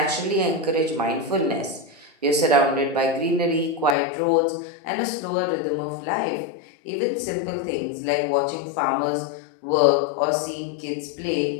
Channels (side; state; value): right; drops out; at 4.0 s